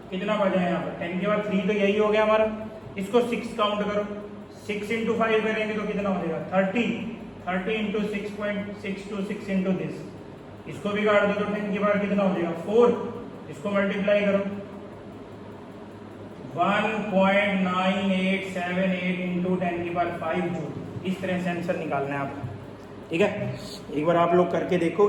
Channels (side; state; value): both; identical; correlation 1.00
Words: कितना बचा है यहाँ पर 10 की पावर 3, तो यही हो गया हमारा। इसको 6 काउंट करो, 6 इंटू 5 करेंगे तो कितना हो जाएगा 30 इंटू 6.626 इंटू दिस, इसको भी काट दो तो 10 की पावर कितना हो जाएगा 4, इसको मल्टीप्लाई करो 1.9878 इंटू 10 की पावर 5 जूल। इस तरह से आंसर निकालना है आपको, ठीक है। एक बार आप लोग करके